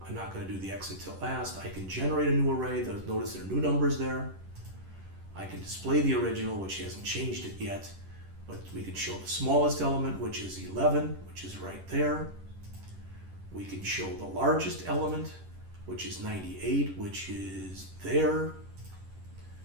I'm not going to do the exit till last. I can generate a new array. Notice there are new numbers there. I can display the original, which hasn't changed it yet, but we can show the smallest element, which is 11, which is right there. We can show the largest element, which is 98, which is there.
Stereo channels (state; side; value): late; left; 11 ms